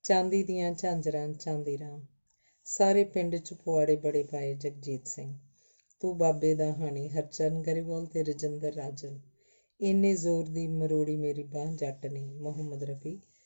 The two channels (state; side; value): inverted; both; correlation -1.00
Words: ਚਾਂਦੀ ਦੀਆਂ ਝਾਂਜਰਾਂ ਚਾਂਦੀ ਰਾਮ, ਸਾਰੇ ਪਿੰਡ 'ਚ ਪੁਆੜੇ ਬੜੇ ਪਾਏ ਜਗਜੀਤ ਸਿੰਘ, ਤੂੰ ਬਾਬੇ ਦਾ ਹਾਣੀ ਹਰਚਰਨ ਗਰੇਵਾਲ ਤੇ ਰਜਿੰਦਰ ਰਾਜਨ, ਇੰਨੇ ਜ਼ੋਰ ਦੀ ਮਰੋੜੀ ਮੇਰੀ ਬਾਂਹ ਜੱਟ ਨੇ ਮੁਹੰਮਦ ਰਫੀ